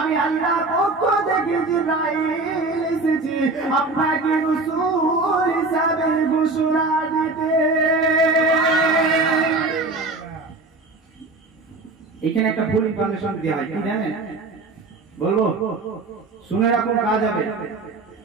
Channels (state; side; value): quieter; left; 3.3 dB